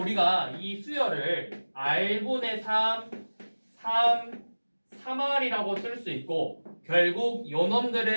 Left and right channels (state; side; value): inverted; both; correlation -1.00